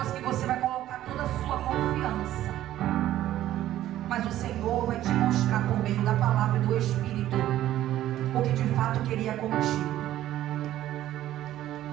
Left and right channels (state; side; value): quieter; left; 13.3 dB